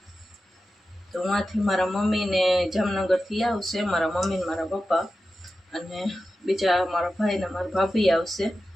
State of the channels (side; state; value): both; normal; correlation 0.92